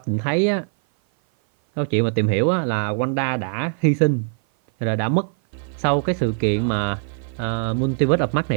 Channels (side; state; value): left; silent; 57 dB below the other